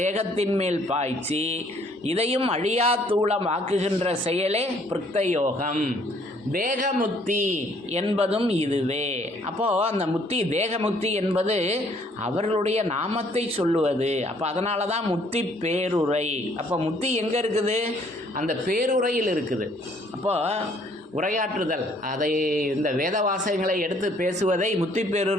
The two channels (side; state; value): both; normal; correlation 0.63